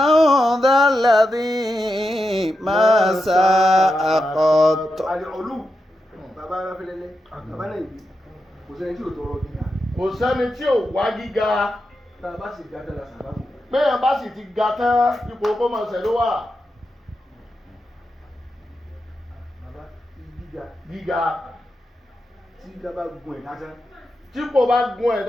ذا الذي ما ساء قط àlè ọlù bàbá aráfẹ́lẹ́lẹ́ bàbá náà ìbí kò sẹ́ni tí ò tọrọ gíga kò sẹ́ni tí ò wá gíga tá a bá sì gbà tẹ́lá sàbábù péyàn bá sì ti ga tán ipò kó mọ̀ ṣẹ̀ ló wà bàbá gíga gíga tí gíga bá gun ẹ̀ lásán tí kò bá gun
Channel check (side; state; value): both; normal; correlation 0.88